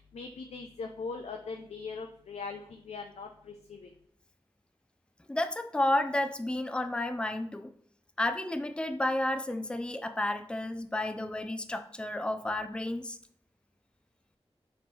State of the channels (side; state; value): both; normal; correlation 0.84